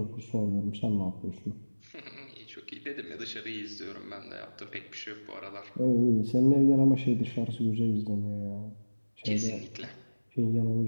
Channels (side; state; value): both; inverted; correlation -1.00